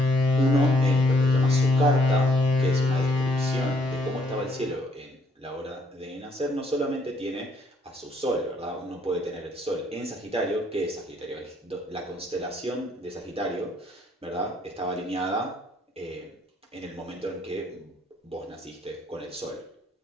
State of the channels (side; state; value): both; normal; correlation 0.67